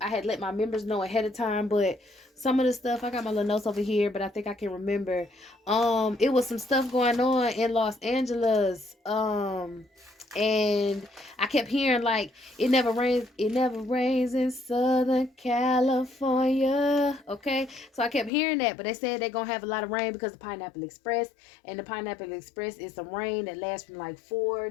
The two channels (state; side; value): drops out; right; at 18.3 s